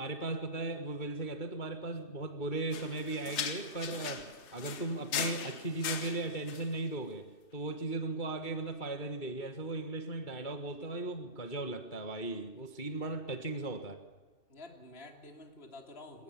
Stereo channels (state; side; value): late; right; 2.6 ms